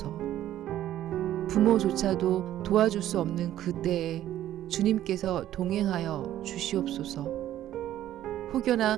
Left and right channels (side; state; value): left; quieter; 12.6 dB